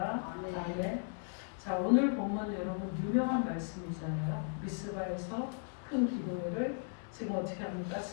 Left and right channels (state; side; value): silent; right; 54 dB below the other